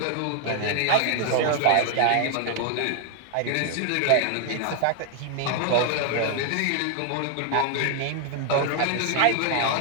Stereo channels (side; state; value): both; different; correlation 0.00